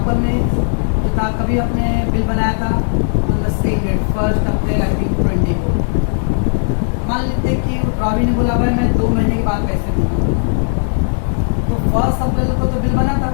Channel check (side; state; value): right; silent; digital silence